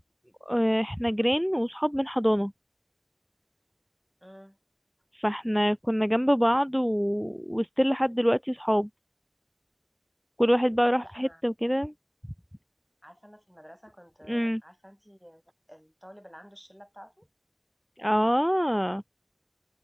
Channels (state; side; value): identical; both; correlation 1.00